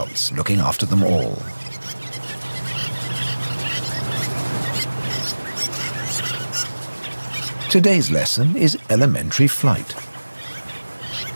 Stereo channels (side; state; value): both; inverted; correlation -1.00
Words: looking after them all. Today's lesson is elementary flight.